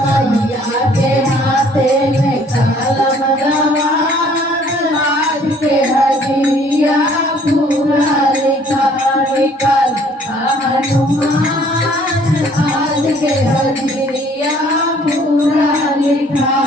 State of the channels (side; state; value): both; normal; correlation 0.58